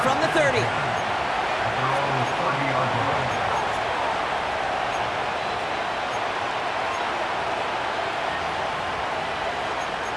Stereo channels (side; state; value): both; identical; correlation 1.00